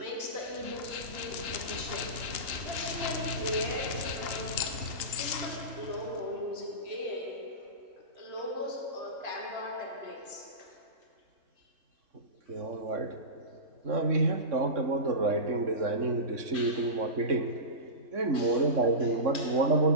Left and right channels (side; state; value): left; late; 2.9 ms